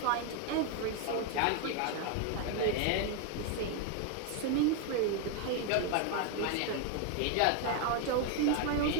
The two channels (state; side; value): different; both; correlation 0.01